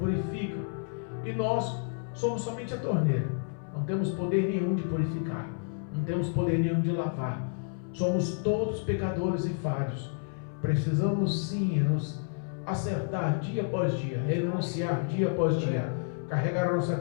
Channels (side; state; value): right; silent; 58 dB below the other